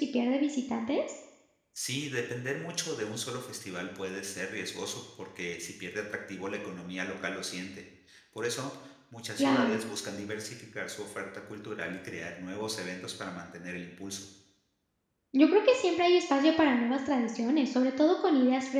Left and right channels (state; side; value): identical; both; correlation 1.00